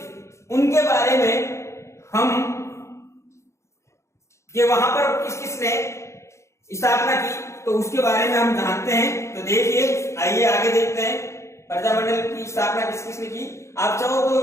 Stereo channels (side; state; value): right; late; 0.14 ms